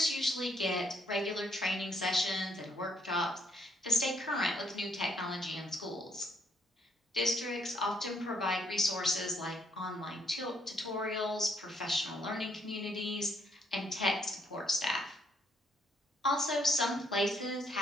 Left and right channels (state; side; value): normal; both; correlation 0.70